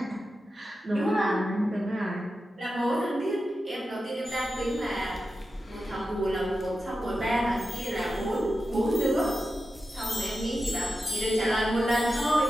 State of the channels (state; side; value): normal; both; correlation 0.91